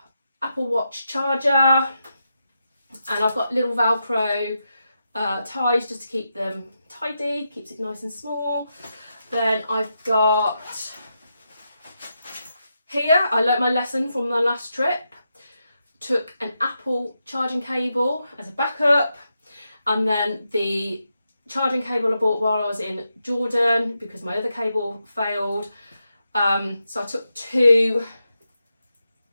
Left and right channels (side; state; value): both; inverted; correlation -0.86